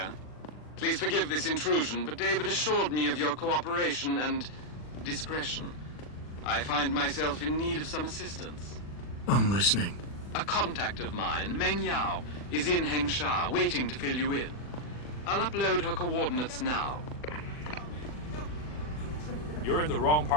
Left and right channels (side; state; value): right; late; 40 ms